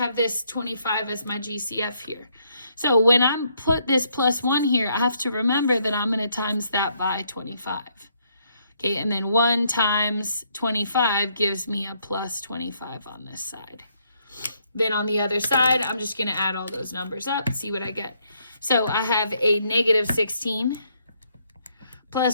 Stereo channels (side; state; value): both; inverted; correlation -0.72